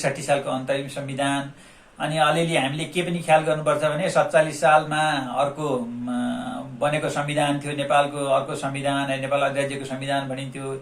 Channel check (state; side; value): identical; both; correlation 1.00